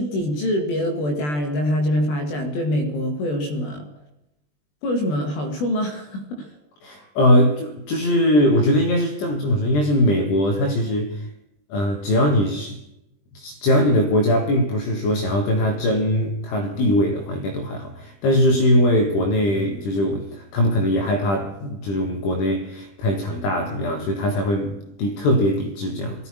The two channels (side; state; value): right; late; 20 ms